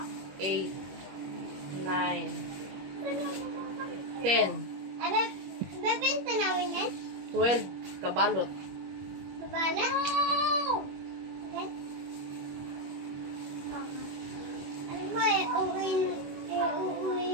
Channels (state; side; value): late; left; 21 ms